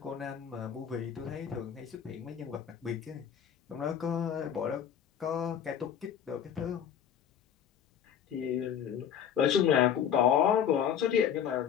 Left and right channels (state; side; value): quieter; right; 8.7 dB